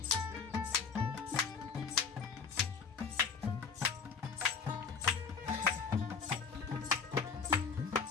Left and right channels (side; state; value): right; quieter; 5.5 dB